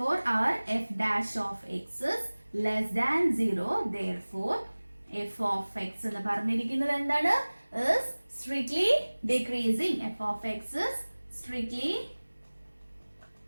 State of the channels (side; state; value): both; inverted; correlation -1.00